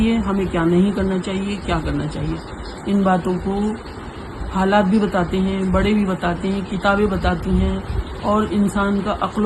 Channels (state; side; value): identical; both; correlation 1.00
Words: ہمیں کیا نہیں کرنا چاہیے، کیا کرنا چاہیے. ان باتوں کو حالات بھی بتاتے ہیں، بڑے بھی بتاتے ہیں، کتابیں بتاتی ہیں، اور انسان کا عقل